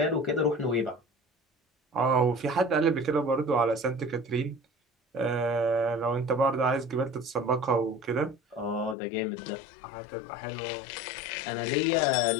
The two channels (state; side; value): drops out; right; at 9.0 s